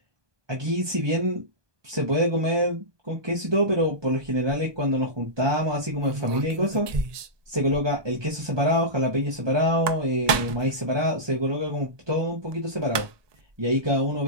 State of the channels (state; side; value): late; left; 1.2 ms